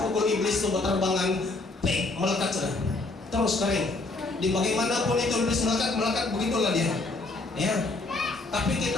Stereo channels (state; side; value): quieter; right; 3.2 dB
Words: pukul iblis itu berterbangan, melekat sudah, terus kering. Di bagaimanapun itu iblis melekat begitulah dia. Ya. Tapi